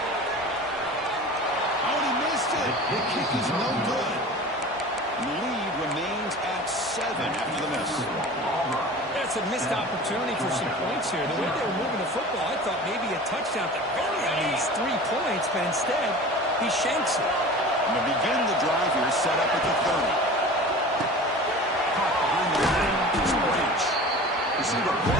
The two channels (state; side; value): normal; both; correlation 0.38